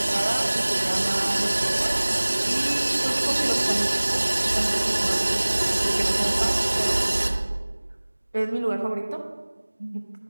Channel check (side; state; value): both; inverted; correlation -1.00